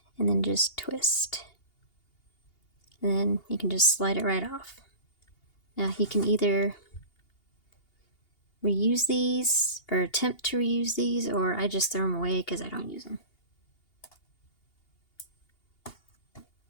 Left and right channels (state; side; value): late; right; 2.8 ms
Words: and then just twist. And then you can just slide it right off. Now you can either reuse these or attempt to reuse these, or I just throw them away because I don't use them.